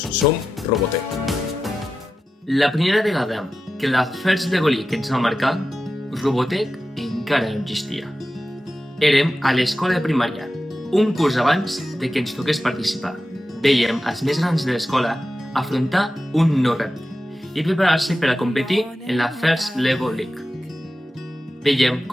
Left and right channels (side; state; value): both; normal; correlation 0.92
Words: som Robotec. La primera vegada que la First Lego League ens va marcar, Robotec encara no existia. Érem a l'escola de primària, un curs abans de que ens toqués participar. Vèiem els més grans de l'escola afrontar un nou repte i preparar-se per a competir en la First Lego League. Vèiem